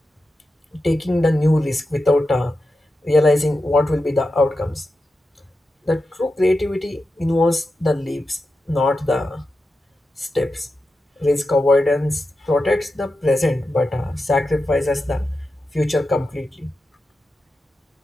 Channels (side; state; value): both; normal; correlation 0.90